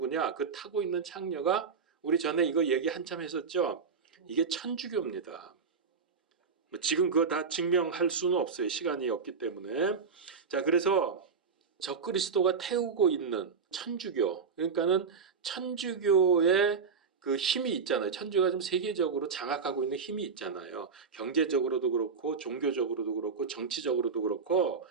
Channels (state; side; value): quieter; left; 5.5 dB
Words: 그 타고 있는 창녀가 우리 전에 이거 얘기 한참 했었죠. 이게 천주교입니다. 지금 그거 다 증명할 수는 없어요. 시간이 없기 때문에. 자, 그래서 적그리스도가 태우고 있는 천주교, 그러니까는 천주교의 그 힘이 있잖아요. 천주교가 좀 세계적으로 장악하고 있는 힘이 있잖아요. 경제적으로도 그렇고 종교적으로도 그렇고 정치적으로도 그렇고